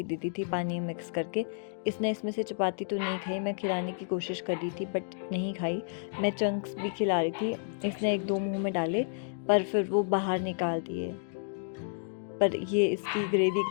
दी थी पानी मिक्स करके। इसने इसमें से चपाती तो नहीं खाई, मैं खिलाने की कोशिश कर रही थी बट नहीं खाई। मैं चंक्स भी खिला रही थी, इसने एक दो मुंह में डाले पर फिर वो बाहर निकाल दिए। पर ये इसकी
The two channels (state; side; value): silent; right; digital silence